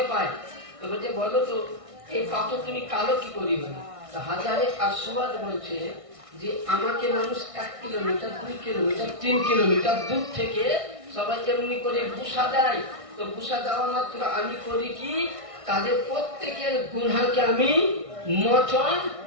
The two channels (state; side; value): late; left; 1.6 ms